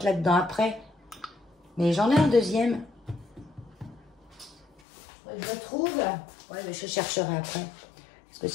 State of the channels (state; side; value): drops out; right; at 4.7 s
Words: là-dedans après. Mais j'en ai un deuxième. Je le trouve. Ouais, mais je chercherai après. Parce que